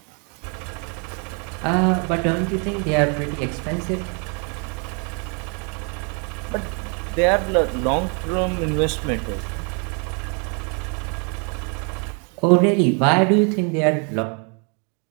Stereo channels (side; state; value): left; quieter; 36.9 dB